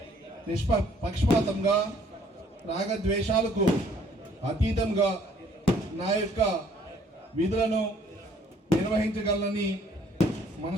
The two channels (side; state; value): both; normal; correlation 0.61